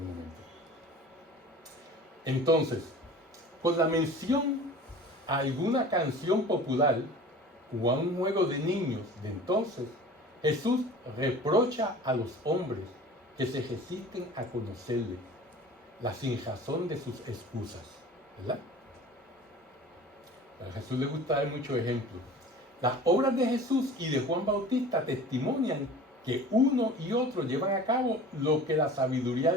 Entonces, con la mención a alguna canción popular o a un juego de niños de entonces, Jesús reprocha a los hombres que se resisten a conocerle la sinrazón de sus excusas, ¿verdad? A Jesús le gusta dar muchos ejemplos. Las obras de Jesús y de Juan Bautista testimonian que uno y otro llevan a cabo lo que la sabiduría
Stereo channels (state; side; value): normal; both; correlation 0.41